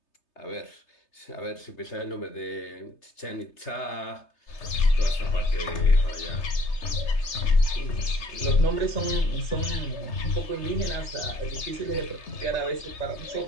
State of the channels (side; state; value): right; late; 3.3 ms